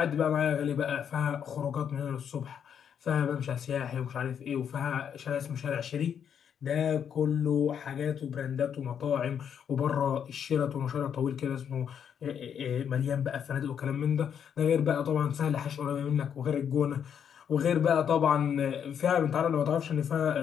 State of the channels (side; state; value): right; quieter; 8.2 dB